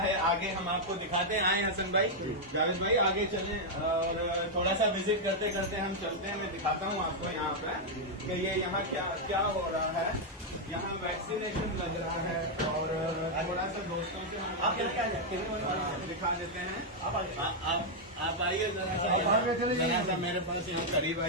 आगे हम आपको दिखाते हैं। आए हसन भाई, जावेद भाई आगे चलें और थोड़ा सा विजिट करते करते हम चलते हैं। मैं दिखाता हूँ आपको यहाँ पे कि ये यहाँ क्या क्या हो रहा है। यहाँ वैक्सीनेशन लग रहा है और थोड़ा सा दोस्तों से हम दिखा देते हैं। आप आइए जरा सा मेरे पास यहाँ करीब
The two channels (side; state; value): both; normal; correlation -0.02